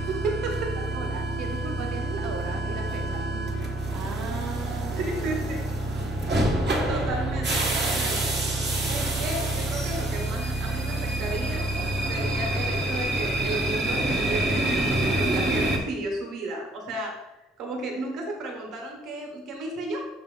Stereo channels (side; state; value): both; normal; correlation 0.63